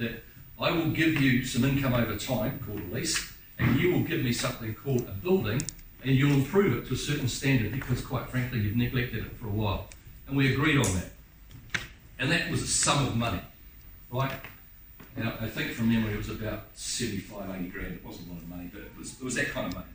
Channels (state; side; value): identical; both; correlation 1.00